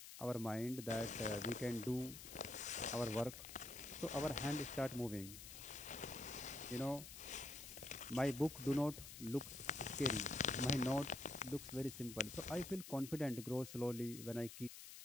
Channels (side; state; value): left; noise; hiss, 12 dB below the sound